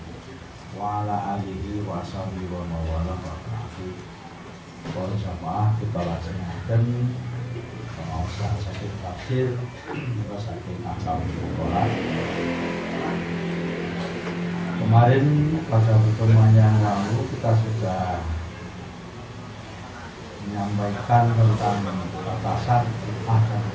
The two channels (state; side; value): identical; both; correlation 1.00